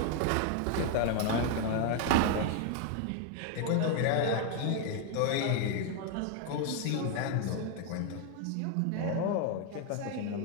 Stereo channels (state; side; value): different; both; correlation 0.01